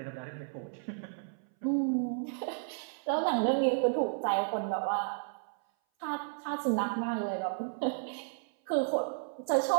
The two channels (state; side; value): silent; left; 56 dB below the other